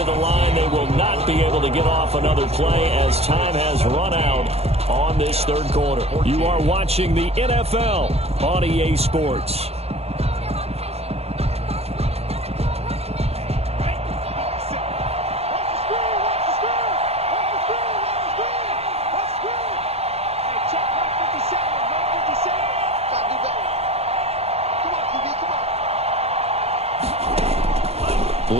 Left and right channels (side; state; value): left; late; 0.29 ms